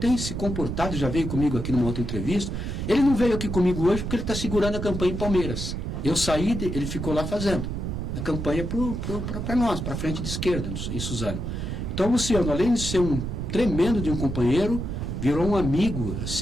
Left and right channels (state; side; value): noise; right; rumble, 4 dB below the sound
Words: se comportado, já veio comigo aqui numa outra entrevista, ele não veio aqui comigo hoje porque ele está segurando a campanha em Palmeiras. Eu saí, ele ficou lá fazendo a campanha para nós, para a frente de esquerda, em Suzano. Então, o Luciano, além de ser um tremendo de um companheiro, virou um amigo,